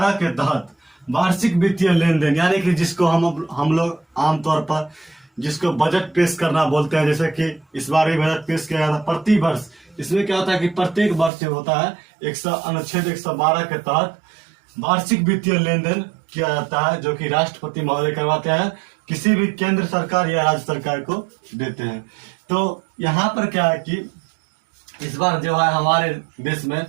के तहत वार्षिक वित्तीय लेन देन, यानी कि जिसको हम लोग आमतौर पर जिसको बजट पेश करना बोलते हैं, जैसे कि इस बार भी बजट पेश किया गया था प्रति वर्ष। इसमें क्या होता है कि प्रत्येक वर्ष जो होता है अनुच्छेद 112 के तहत वार्षिक वित्तीय लेन देन किया जाता है, जो कि राष्ट्रपति महोदय करवाते हैं, किसी भी केंद्र सरकार या राज्य सरकार को देते हैं। तो यहाँ पर क्या है कि इस बार जो है हमारे देश में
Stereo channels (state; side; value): drops out; left; at 11.3 s